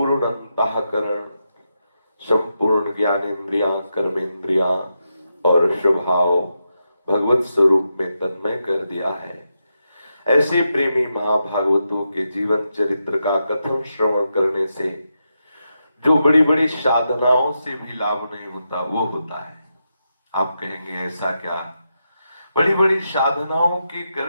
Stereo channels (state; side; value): inverted; both; correlation -0.86